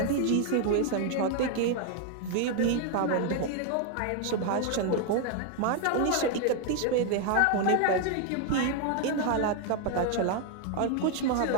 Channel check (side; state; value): both; different; correlation 0.00